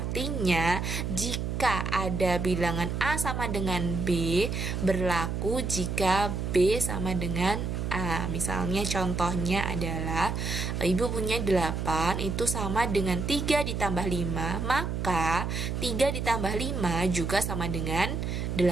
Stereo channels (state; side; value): noise; right; hum, 2 dB below the sound